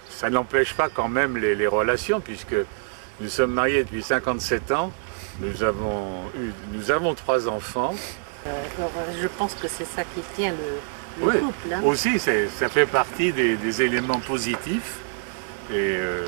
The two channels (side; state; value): left; silent; 62 dB below the other